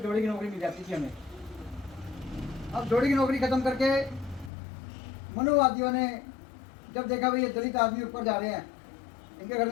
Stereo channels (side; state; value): right; drops out; at 4.5 s